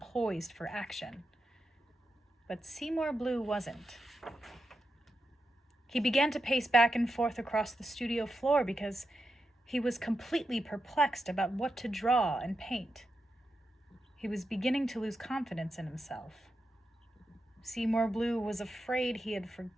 poised for action. But Seymour Bleu wasn't. He began to pace back and forth across the studio floor because he was completely perplexed about what to draw and paint. He was beginning to lose confidence in himself. Seymour Bleu was afraid he had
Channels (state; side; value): normal; both; correlation 0.88